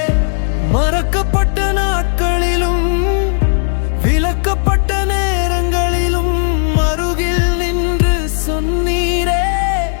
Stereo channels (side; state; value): right; silent; 65 dB below the other